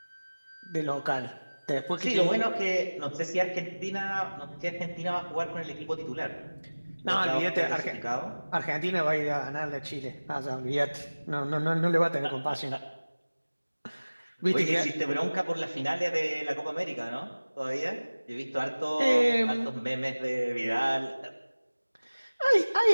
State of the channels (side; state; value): both; inverted; correlation -1.00